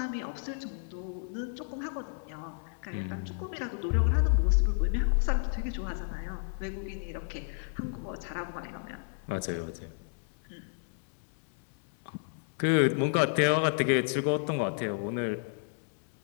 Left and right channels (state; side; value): silent; right; digital silence